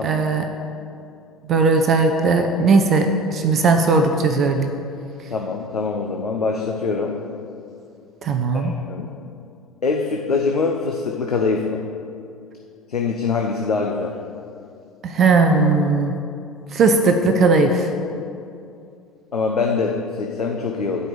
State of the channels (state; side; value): normal; both; correlation 0.39